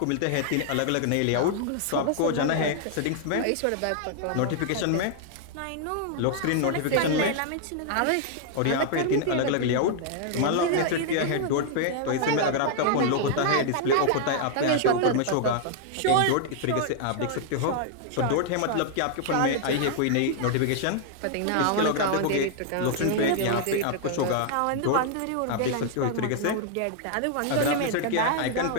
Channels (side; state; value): both; different; correlation -0.01